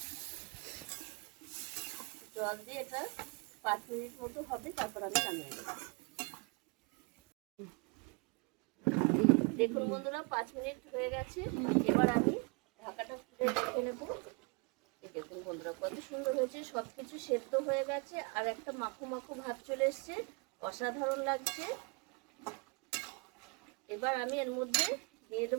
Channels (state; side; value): quieter; left; 31.8 dB